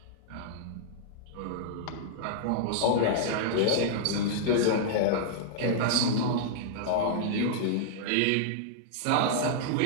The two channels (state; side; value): different; both; correlation -0.01